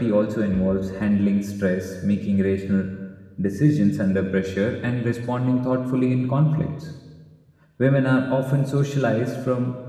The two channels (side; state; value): both; identical; correlation 1.00